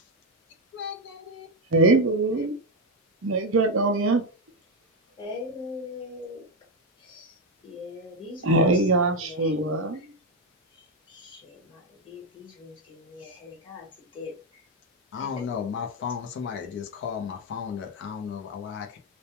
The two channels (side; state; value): both; normal; correlation 0.07